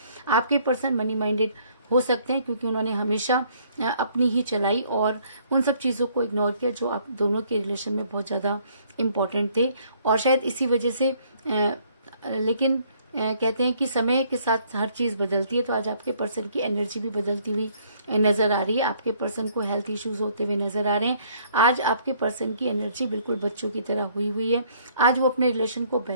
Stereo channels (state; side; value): inverted; both; correlation -0.64